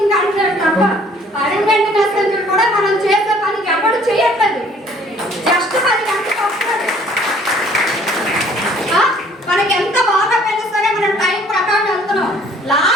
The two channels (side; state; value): both; normal; correlation 0.57